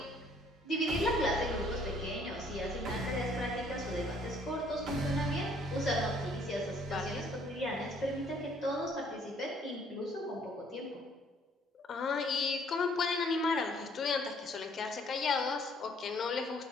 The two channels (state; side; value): normal; both; correlation 0.62